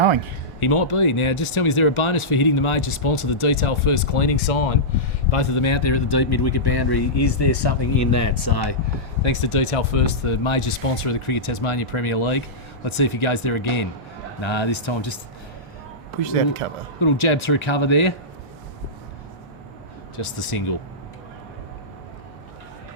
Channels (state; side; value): normal; both; correlation -0.14